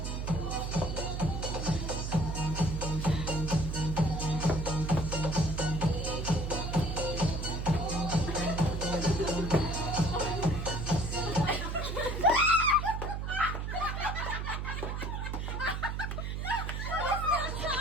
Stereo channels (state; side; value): noise; right; hum, 3 dB below the sound